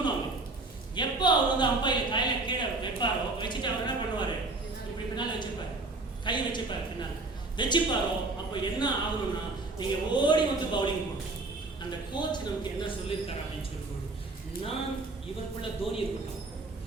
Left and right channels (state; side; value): quieter; left; 3.2 dB